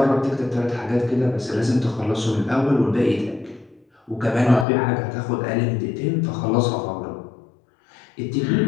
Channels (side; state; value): right; drops out; at 4.7 s